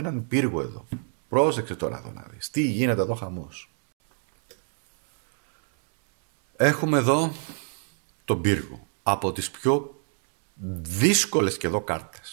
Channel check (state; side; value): silent; left; 60 dB below the other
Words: πύργο εδώ. Πρόσεξε τώρα εδώ να δεις. Τι γίνεται εδώ χαμός. Έχουμε εδώ τον πύργο. Από τις πιο δύσκολες και εδώ